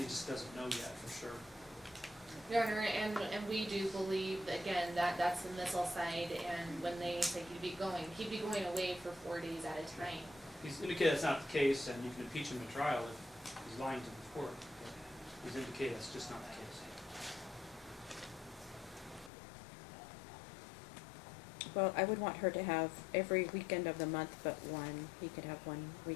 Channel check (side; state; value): right; drops out; at 19.3 s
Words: just doesn't know yet for sure. Your Honor, and we do believe, again, that's the missile side, and when they say he'd be going away for 4 days at a time. He's indicated that's not the case, and you can impeach him in trial if he's lying to the court. He's indicated that's just not the case. Well, I would want her to have every weekend of the month but one. He could have one